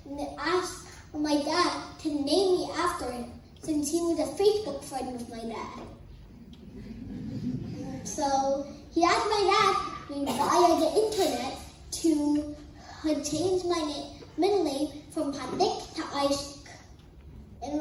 to ask my dad to name me after him, since he was a Facebook friend of my dad. So he asked my dad via the internet to change my middle name from Panik to Isaac. and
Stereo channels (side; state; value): both; identical; correlation 1.00